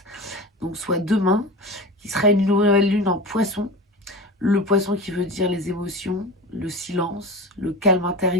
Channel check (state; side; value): normal; both; correlation 0.30